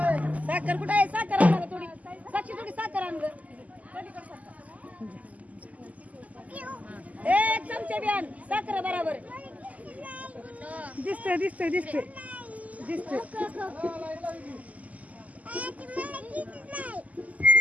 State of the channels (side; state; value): left; late; 0.074 ms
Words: साखर कुठे आहे साखर आणा थोडी साक्षी थोडी साखर आण ग एक चमचे बी आण साखर बरोबर दिसते दिसते दिसते दिसते